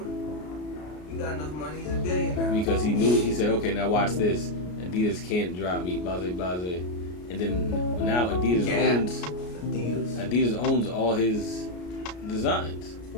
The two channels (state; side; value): late; right; 33 ms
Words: He got enough money. He's a billionaire. Because he said, okay, now watch this. Adidas can't drop me, blase, blase. And then now Adidas owns all his designs.